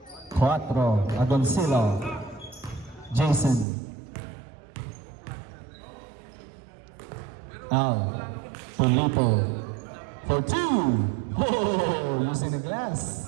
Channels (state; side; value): drops out; left; at 3.7 s